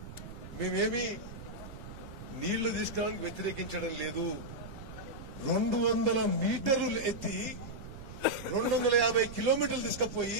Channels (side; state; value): right; noise; rumble, 12 dB below the sound